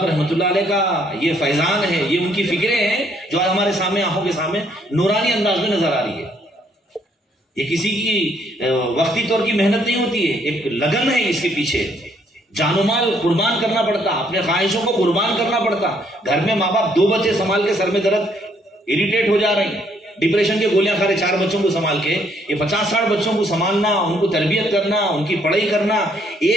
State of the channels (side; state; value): both; normal; correlation 0.68